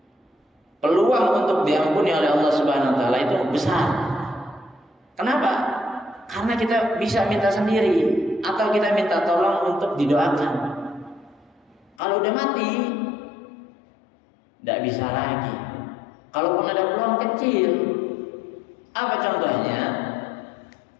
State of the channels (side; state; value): right; drops out; at 12.0 s